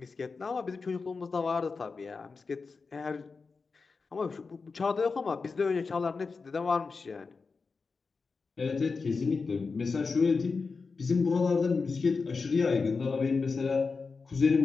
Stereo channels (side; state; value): right; quieter; 4.6 dB